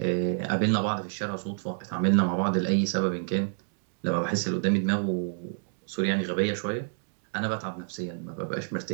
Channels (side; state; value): left; silent; digital silence